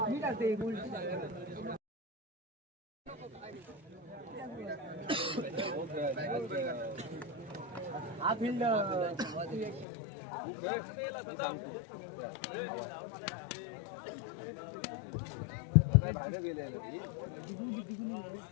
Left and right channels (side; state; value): right; drops out; at 9.9 s